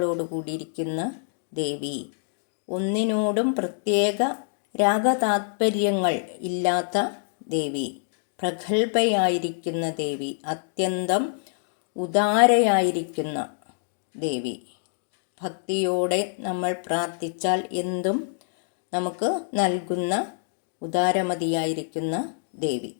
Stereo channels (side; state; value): right; silent; digital silence